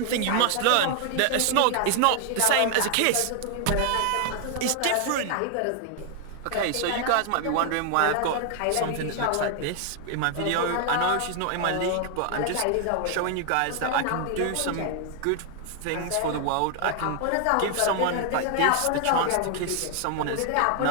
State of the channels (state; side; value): different; both; correlation 0.00